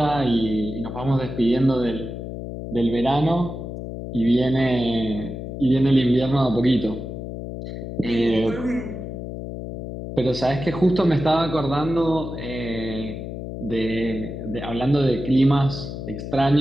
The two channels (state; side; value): noise; left; hum, 8 dB below the sound